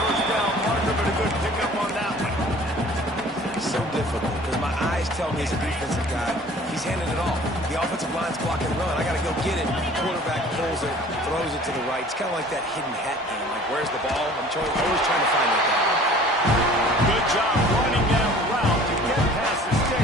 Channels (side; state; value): both; normal; correlation 0.48